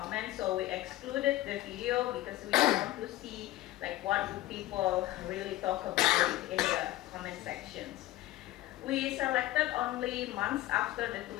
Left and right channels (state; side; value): quieter; right; 16.3 dB